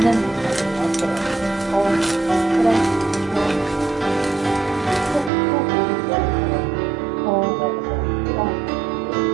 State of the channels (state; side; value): drops out; left; at 5.3 s